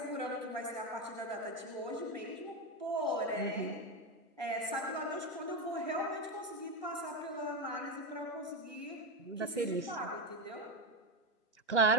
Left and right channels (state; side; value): normal; both; correlation 0.12